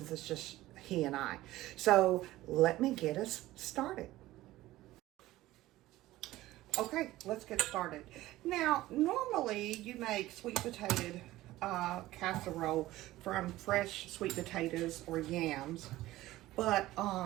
it's just he and I. So let me get us started. Okay, let's get started. Now, normally you make sweet potato casserole from fresh sweet potatoes or yams, but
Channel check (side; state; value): left; quieter; 16.6 dB